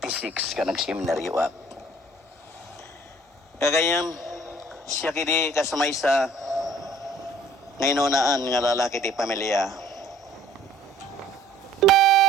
ka nagseminary wak. Kagayam siya kidi kasamay sa ngayon nga lalaki ti pamilya.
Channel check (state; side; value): normal; both; correlation 0.55